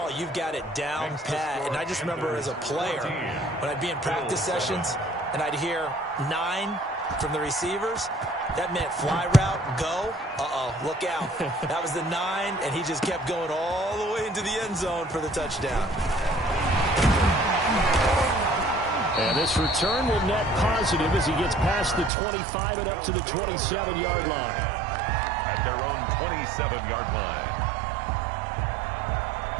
You've got it down pat. And I just remember as a player, when I'd be in practice sessions, and I'd hear 9 from the receivers, that meant fly route, go. Uh-oh, look out. That was the 9, and he just kept going all the way into the end zone for the touchdown. And this return will net positive as he gets past the 25 and up to the 27-yard line. At their own 27-yard line.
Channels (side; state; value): left; drops out; at 22.1 s